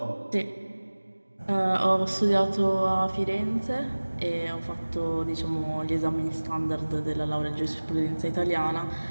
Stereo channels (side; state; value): both; inverted; correlation -1.00